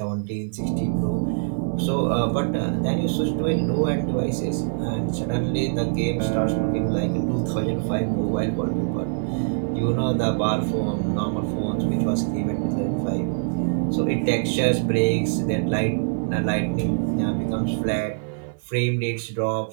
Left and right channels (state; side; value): silent; left; 58 dB below the other